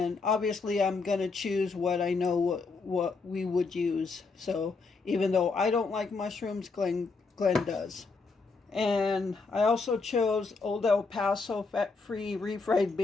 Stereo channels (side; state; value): right; quieter; 4.2 dB